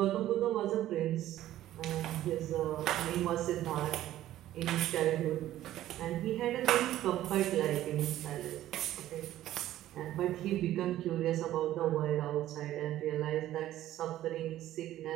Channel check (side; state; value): left; quieter; 13.5 dB